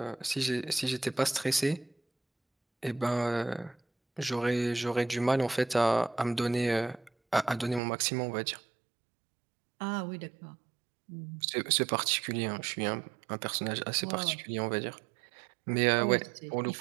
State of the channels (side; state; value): left; drops out; at 7.8 s